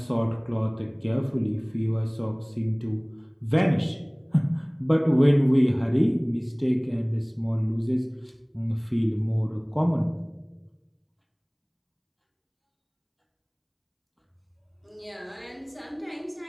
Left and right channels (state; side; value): identical; both; correlation 1.00